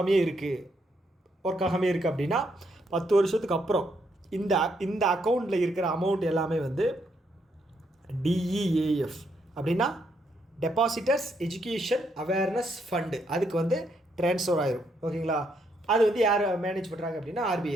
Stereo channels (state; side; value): normal; both; correlation 0.75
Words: இருக்குது, ஒர்க் ஆகாமே இருக்குது அப்படின்னா 10 வருஷத்துக்கு அப்புறம் இந்த அக்கௌண்ட்டில் இருக்கிற அமௌண்ட் எல்லாமே வந்து டிஇஏஎஃப் அப்படின்னா டெபாசிட்டர்ஸ் எஜுகேஷன் அவேர்னஸ் ஃபண்டு அதுக்கு வந்து ட்ரான்ஸ்ஃபர் ஆயிரும். ஓகேங்களா, அது வந்து யார் மேனேஜ் பண்ணுறாங்க அப்படின்னா ஆர்பிஐ